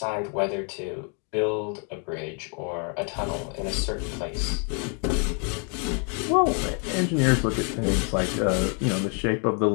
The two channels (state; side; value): quieter; right; 38.7 dB